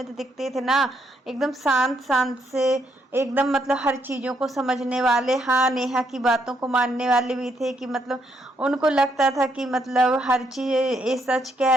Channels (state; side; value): normal; both; correlation 0.75